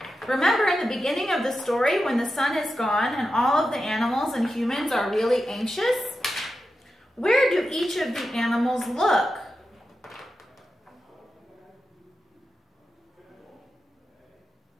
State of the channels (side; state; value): both; normal; correlation 0.90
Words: Remember in the beginning of the story when the sun is gone and all of the animals and humans are really anxious? Where do each of the animals look?